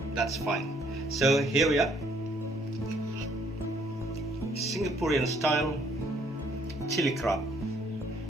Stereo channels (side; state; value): both; normal; correlation 0.65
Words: that's fine. So here we are, Singaporean style chili crab.